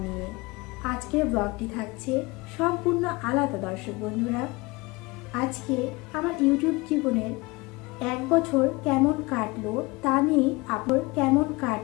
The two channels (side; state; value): right; quieter; 23.9 dB